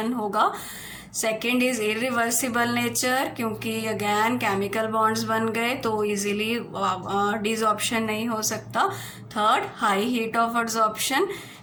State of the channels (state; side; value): identical; both; correlation 1.00